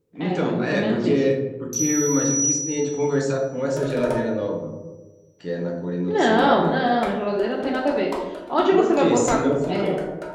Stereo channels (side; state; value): both; identical; correlation 1.00